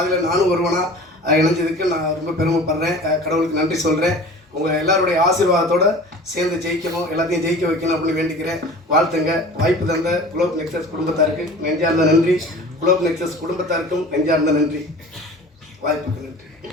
நானும் ஒருவனாக இணைஞ்சதுக்கு நான் ரொம்ப பெருமைப்படுறேன். கடவுளுக்கு நன்றி சொல்கிறேன். உங்கள் எல்லாருடைய ஆசீர்வாதத்தோடு சேர்ந்து ஜெயிக்கணும், எல்லாத்தையும் ஜெயிக்க வைக்கணும் அப்படின்னு வேண்டிக்கிறேன். வாழ்த்துங்க. வாய்ப்பு தந்த குளோப் நெக்ஸஸ் குடும்பத்தாருக்கு நெஞ்சார்ந்த நன்றி. குளோப் நெக்ஸஸ் குடும்பத்தாருக்கும் நெஞ்சார்ந்த நன்றி. வாய்ப்புக்கு நன்றி.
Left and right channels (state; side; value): normal; both; correlation 0.41